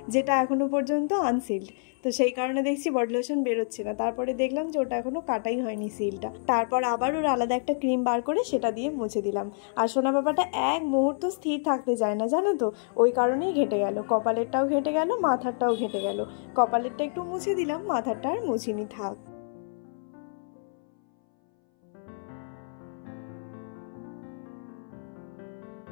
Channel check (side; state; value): right; silent; 59 dB below the other